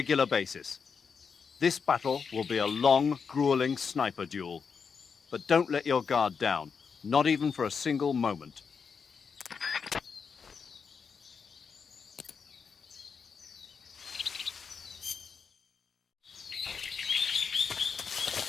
basis. This battle will be a long, grueling sniper duel. But don't let your guard down, not even for a single moment.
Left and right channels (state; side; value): quieter; right; 5.9 dB